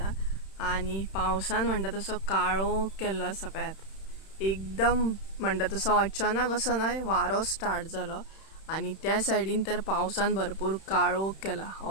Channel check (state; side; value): late; right; 31 ms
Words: आनी पावसान म्हणटा तसो काळोख केल्लो आसा पळयात। एकदम म्हणटा तसो अचानक असो न्हय वारो स्टार्ट जालो आनी त्या सायडीन तर पावसान भरपूर काळोख केला,